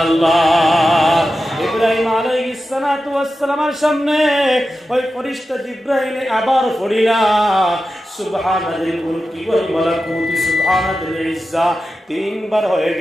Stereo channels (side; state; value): both; normal; correlation 0.92